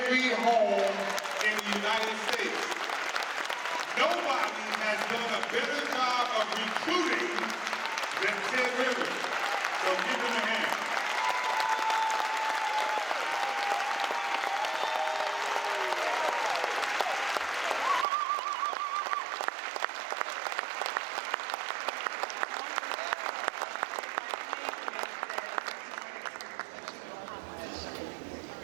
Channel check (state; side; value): drops out; left; at 18.1 s